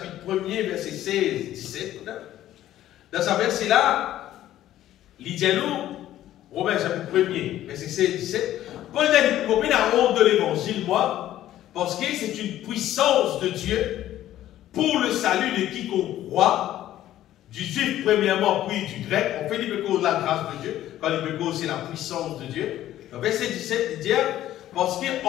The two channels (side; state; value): right; quieter; 13.1 dB